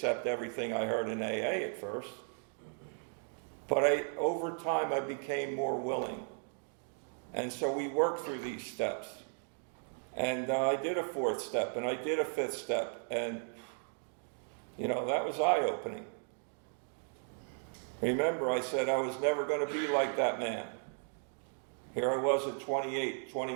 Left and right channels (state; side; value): silent; left; 54 dB below the other